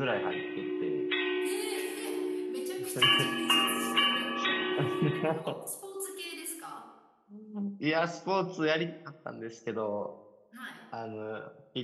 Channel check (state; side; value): identical; both; correlation 1.00